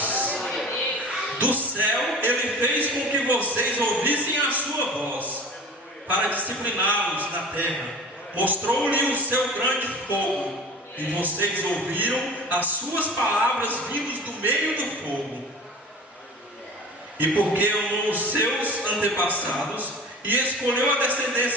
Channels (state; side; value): normal; both; correlation 0.38